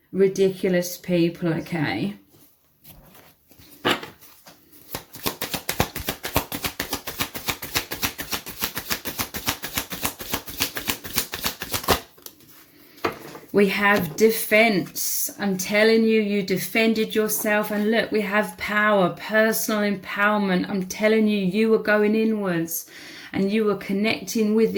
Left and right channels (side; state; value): both; identical; correlation 1.00